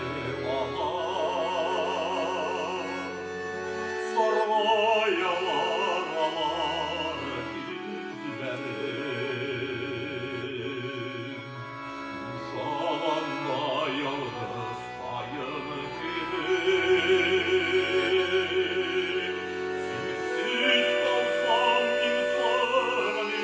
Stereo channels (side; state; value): both; identical; correlation 1.00